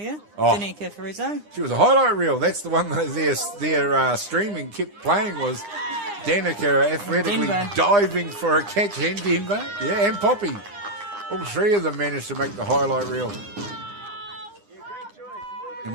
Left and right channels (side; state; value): left; late; 9.8 ms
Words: Danica Fariso. She was a highlight reel. That's the one that their streaming kept playing was Danica athletically diving for a catch in Denver. Yeah, and Poppy. All three of them managed to make the highlight reel.